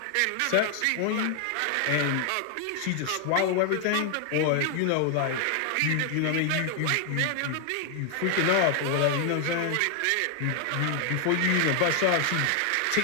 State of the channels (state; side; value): different; both; correlation 0.00